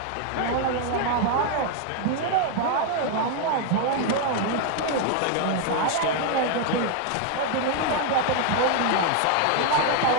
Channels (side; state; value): both; different; correlation 0.01